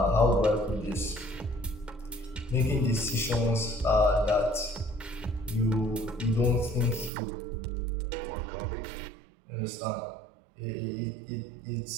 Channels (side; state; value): left; drops out; at 7.1 s